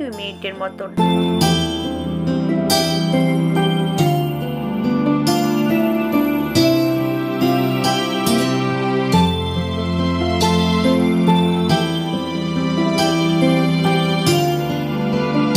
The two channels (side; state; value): both; identical; correlation 1.00